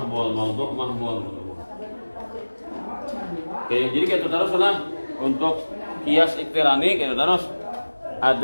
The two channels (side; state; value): both; inverted; correlation -1.00